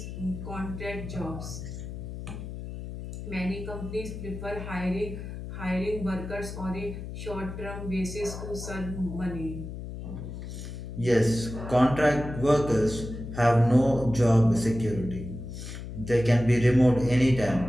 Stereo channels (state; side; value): noise; left; hum, 9 dB below the sound